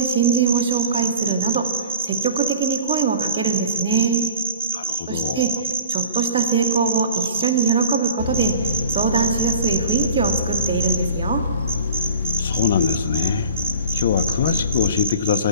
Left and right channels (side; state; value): both; inverted; correlation -0.41